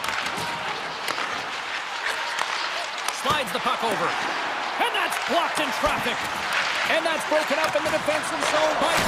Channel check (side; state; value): both; identical; correlation 1.00